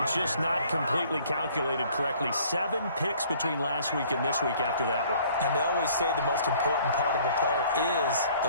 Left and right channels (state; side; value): inverted; both; correlation -0.56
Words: just not completely calculated correctly. 7 picks between last week and this week after that one. And they always say the most important part of a player is